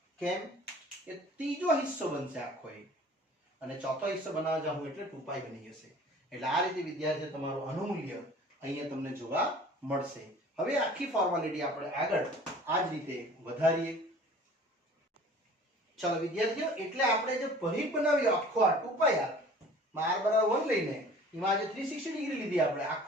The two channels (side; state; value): both; normal; correlation 0.47